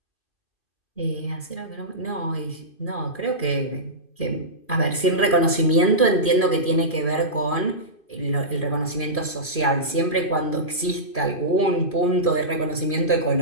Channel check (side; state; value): right; late; 2.4 ms